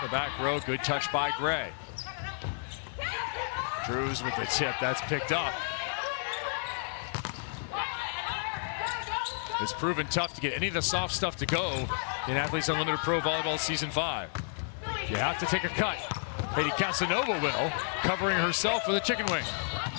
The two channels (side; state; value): right; silent; 57 dB below the other